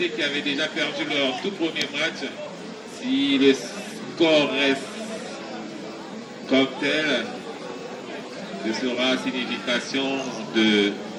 qui avait déjà perdu leur tout premier match, si le score reste comme tel, ce sera signification de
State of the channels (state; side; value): identical; both; correlation 1.00